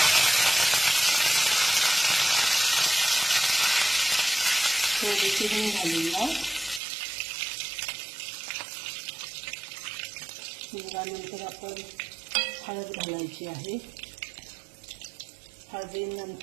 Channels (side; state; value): left; drops out; at 6.8 s